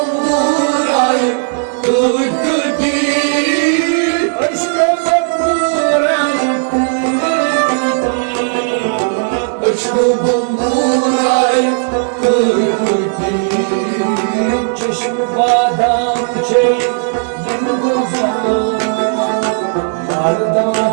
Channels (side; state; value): left; silent; 66 dB below the other